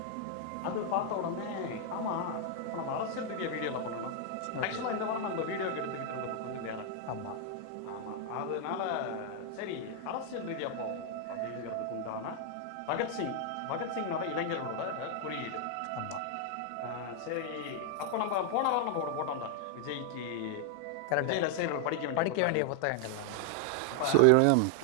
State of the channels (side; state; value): both; different; correlation 0.00